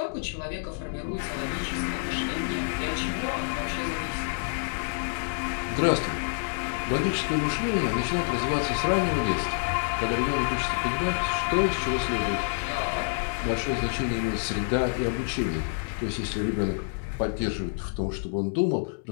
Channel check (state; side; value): silent; right; digital silence